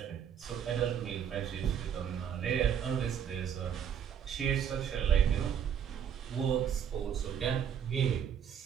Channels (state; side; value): quieter; left; 8.4 dB